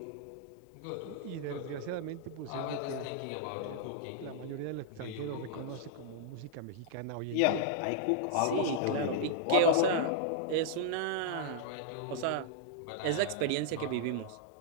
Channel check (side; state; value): both; different; correlation -0.01